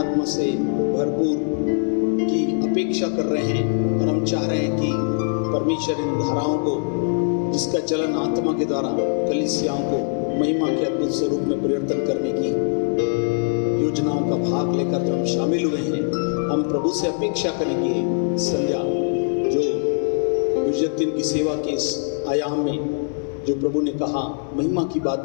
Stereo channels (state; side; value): silent; right; digital silence